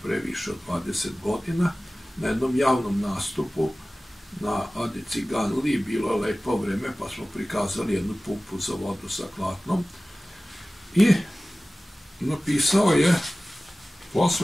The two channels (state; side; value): normal; both; correlation 0.97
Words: pre više od 20 godina na jednom javnom nastupu na Adi Ciganliji. Bilo je lepo vreme, pa smo prikazali jednu pumpu za vodu sa klatnom. I napisao je